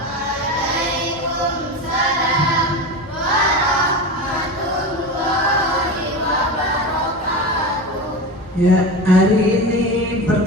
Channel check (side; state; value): both; normal; correlation 0.25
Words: warahmatullahi wabarakatuh. Ya, hari ini